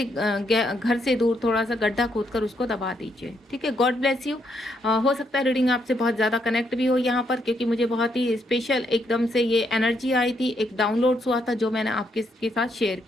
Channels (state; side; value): normal; both; correlation 0.76